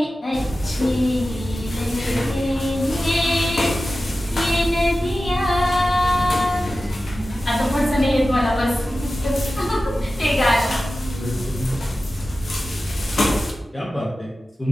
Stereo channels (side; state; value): both; normal; correlation 0.94